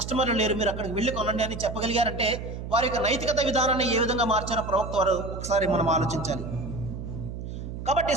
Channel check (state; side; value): noise; right; hum, 8 dB below the sound